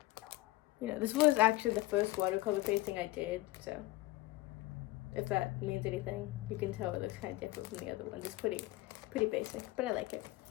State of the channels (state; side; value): quieter; right; 18.9 dB